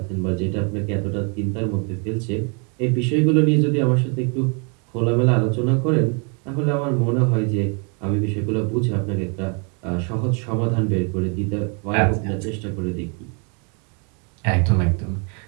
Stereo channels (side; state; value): left; quieter; 36.2 dB